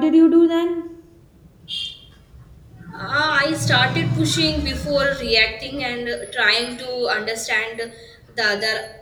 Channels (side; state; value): both; identical; correlation 1.00